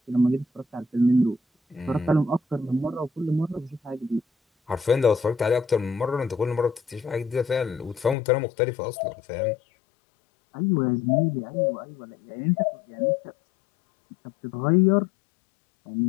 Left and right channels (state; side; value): drops out; right; at 8.2 s